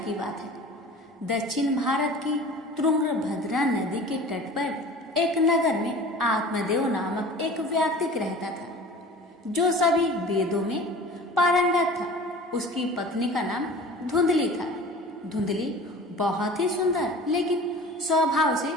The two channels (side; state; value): both; normal; correlation 0.41